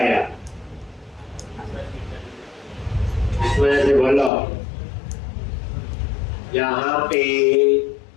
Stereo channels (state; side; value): drops out; right; at 4.3 s